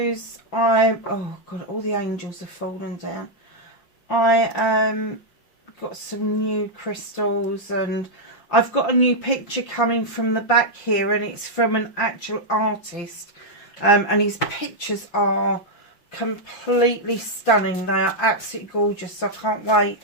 oh god, all the angels have fallen down. I got some new crystals, and I've got a new picture coming from the back here, and it's from an actual artist, and his pictures are completely stunning. They are absolutely gorgeous, so I can't wait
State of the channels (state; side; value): late; right; 5.8 ms